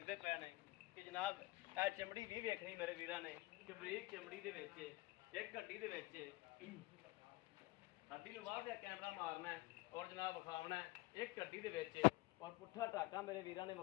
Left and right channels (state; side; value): quieter; right; 21.4 dB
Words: पे ने कि जनाब ए चमड़ी भी वेखनी मेरे वीरां ने कि बरीक चमड़ी दे विच एक हड्डी दे विच हड्डी नूं बाहर कैमरा मारना है और जनाब विखावना है एक हड्डी दे विच। और पुट्ठा टाका मेरे वीरां ने